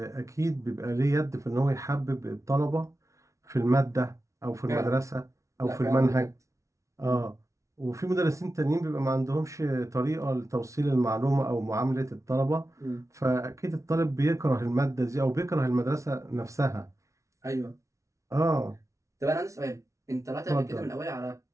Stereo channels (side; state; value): left; late; 0.14 ms